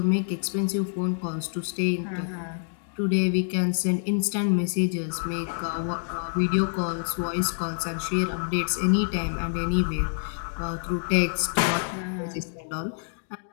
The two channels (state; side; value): silent; right; digital silence